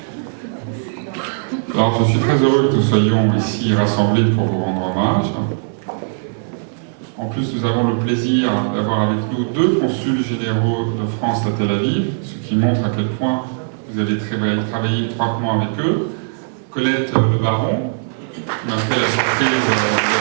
Alors, je suis très heureux que nous soyons ici rassemblés pour vous rendre hommage. En plus, nous avons le plaisir d'avoir avec nous 2 consuls généraux de France à Tel Aviv, ce qui montre à quel point vous avez travaillé étroitement avec eux. Colette Le Baron, qui m'a fait la surprise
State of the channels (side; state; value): left; silent; 67 dB below the other